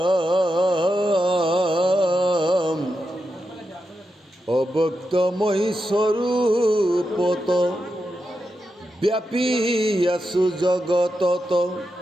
অব্যক্তময়ী স্বৰূপত ব্যাপী আছো জগতত,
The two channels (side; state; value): both; normal; correlation 0.88